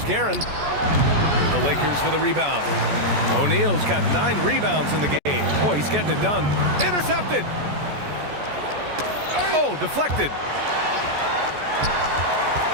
Guerin. The Lakers for the rebound. O'Neal's got 9 rebounds in the game. Boy, he's getting it done. Intercepted. Oh, deflected.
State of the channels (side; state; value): left; late; 14 ms